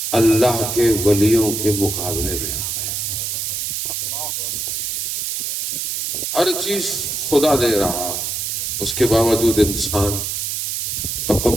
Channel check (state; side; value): noise; right; hiss, 2 dB below the sound